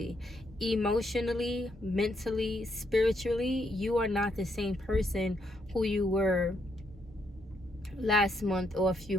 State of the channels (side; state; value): both; normal; correlation 0.76